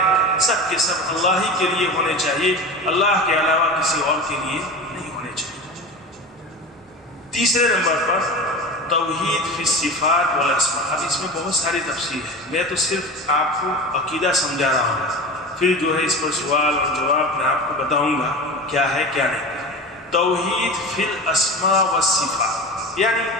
سب کے سب اللہ ہی کے لیے ہونے چاہیے، اللہ کے علاوہ کسی اور کے لیے نہیں ہونے چاہیے۔ تیسرے نمبر پر توحید فی الصفات والاسماء۔ اب اس میں بہت ساری تفصیل ہے، میں تو صرف آپ کو عقیدہ سمجھا رہا ہوں، پھر جو ہے اس پر سوال اور جواب میں آپ کو بتاؤں گا کیا ہے کیا نہیں۔ توحید فی الاسماء والصفات یعنی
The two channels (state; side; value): normal; both; correlation 0.30